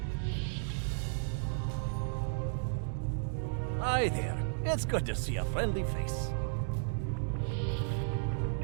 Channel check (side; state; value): left; silent; digital silence